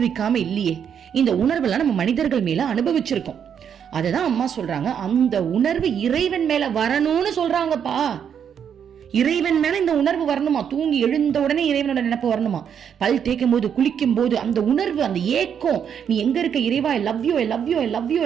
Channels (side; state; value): left; quieter; 8.1 dB